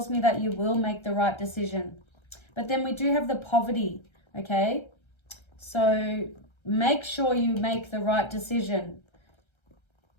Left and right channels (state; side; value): late; right; 1.3 ms